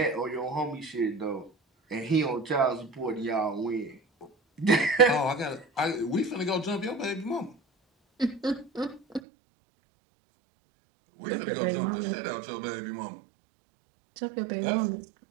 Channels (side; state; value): left; drops out; at 9.2 s